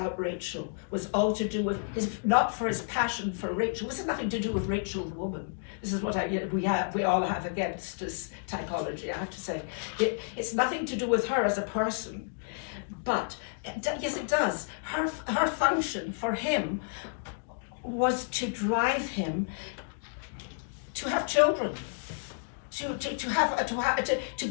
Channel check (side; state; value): right; silent; digital silence